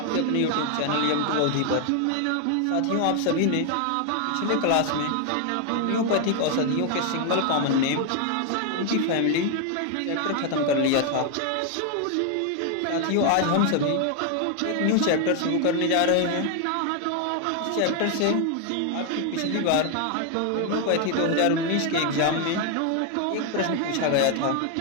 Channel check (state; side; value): different; both; correlation 0.01